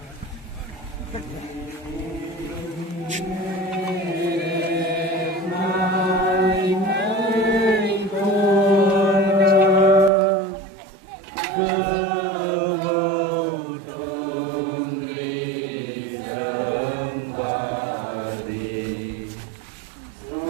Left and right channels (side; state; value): left; drops out; at 10.1 s